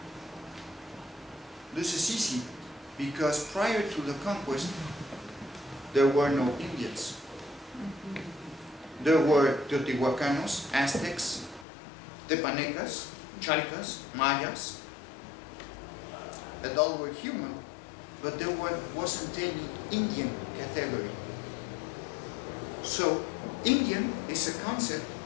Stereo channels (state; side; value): drops out; right; at 11.7 s